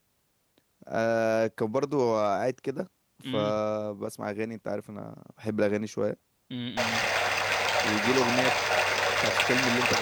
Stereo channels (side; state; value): both; identical; correlation 1.00